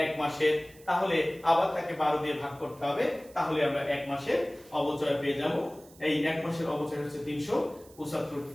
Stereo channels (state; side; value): noise; right; hiss, 24 dB below the sound